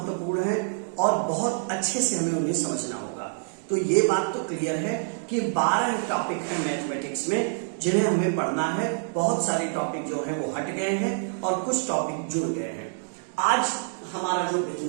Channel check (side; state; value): left; silent; digital silence